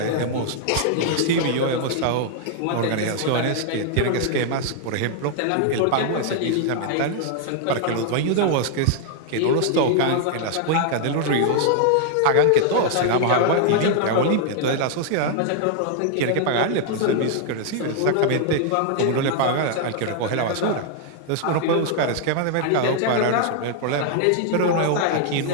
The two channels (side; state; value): both; different; correlation 0.00